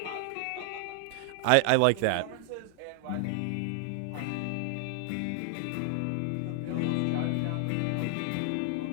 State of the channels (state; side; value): different; both; correlation 0.00